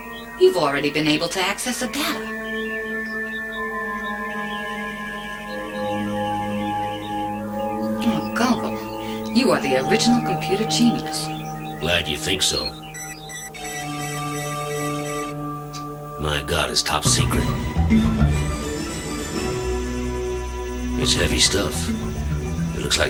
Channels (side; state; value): both; identical; correlation 1.00